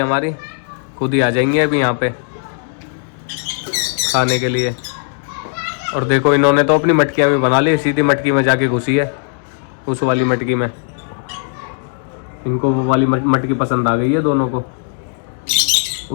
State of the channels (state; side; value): silent; right; digital silence